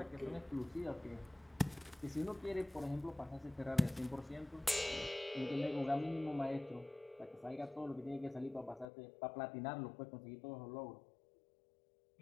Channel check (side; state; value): right; drops out; at 8.8 s